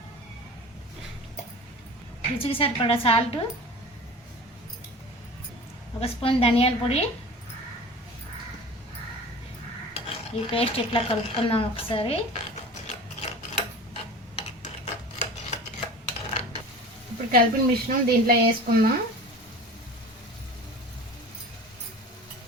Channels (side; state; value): both; normal; correlation 0.38